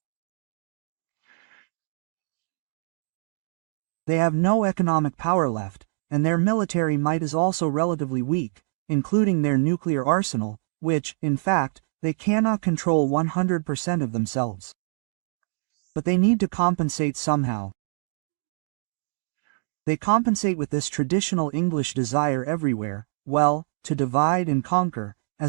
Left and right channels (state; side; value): silent; left; digital silence